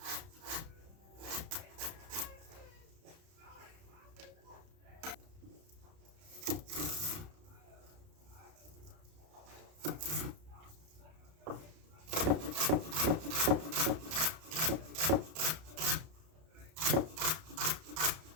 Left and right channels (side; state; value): left; late; 31 ms